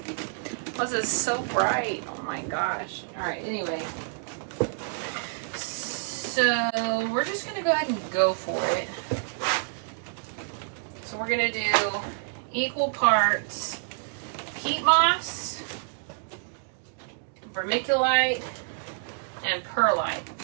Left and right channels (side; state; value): left; silent; digital silence